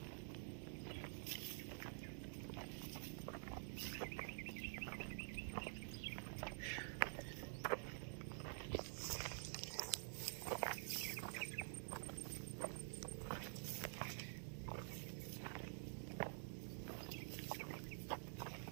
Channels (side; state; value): left; silent; digital silence